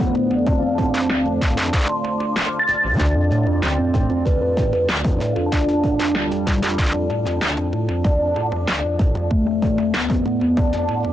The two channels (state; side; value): normal; both; correlation 0.88